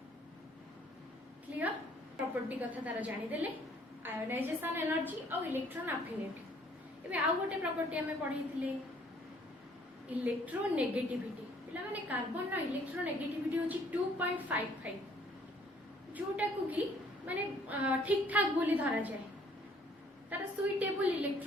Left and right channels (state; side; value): normal; both; correlation 0.61